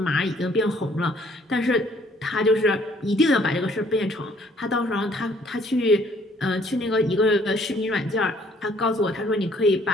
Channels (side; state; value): both; normal; correlation 0.62